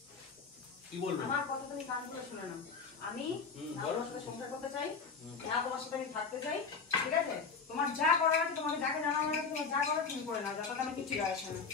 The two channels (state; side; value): quieter; right; 5.1 dB